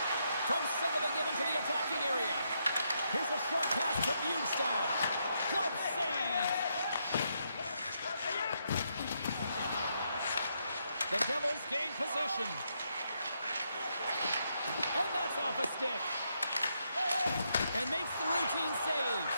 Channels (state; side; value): inverted; both; correlation -0.79